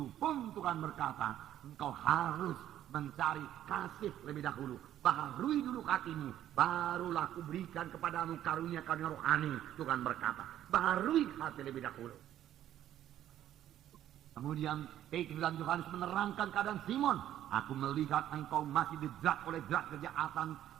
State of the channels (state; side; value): quieter; left; 11.8 dB